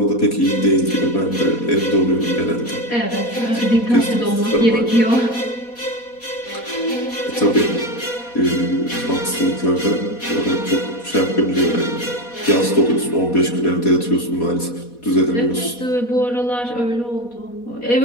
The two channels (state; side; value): late; right; 4.1 ms